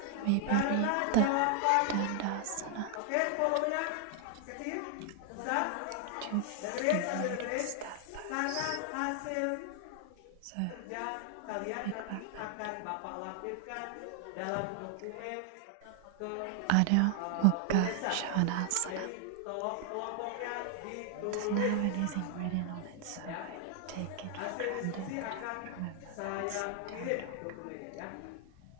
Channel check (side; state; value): both; different; correlation 0.00